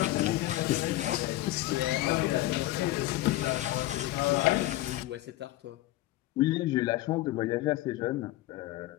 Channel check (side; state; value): right; quieter; 16.5 dB